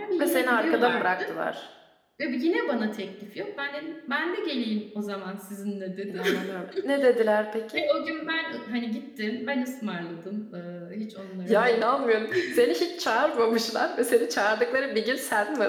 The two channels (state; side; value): identical; both; correlation 1.00